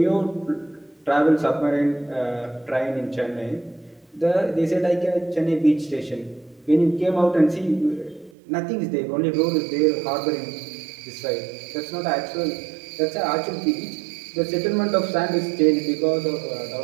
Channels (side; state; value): left; drops out; at 8.3 s